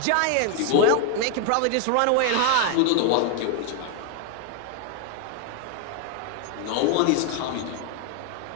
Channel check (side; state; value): both; different; correlation 0.00